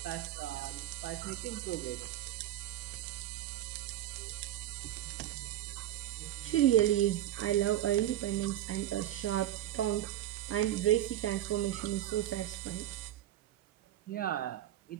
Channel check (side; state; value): left; quieter; 12.9 dB